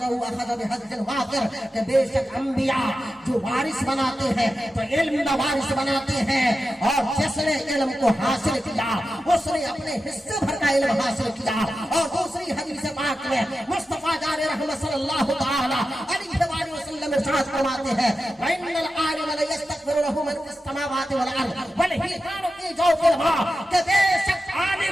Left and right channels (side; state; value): both; normal; correlation 0.91